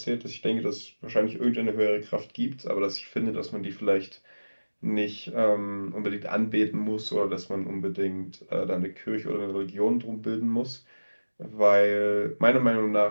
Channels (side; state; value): both; inverted; correlation -1.00